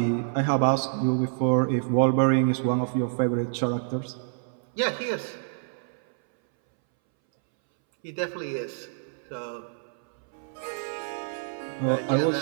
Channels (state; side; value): silent; left; 60 dB below the other